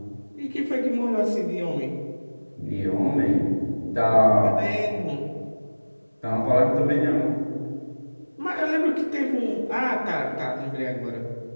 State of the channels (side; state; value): both; inverted; correlation -1.00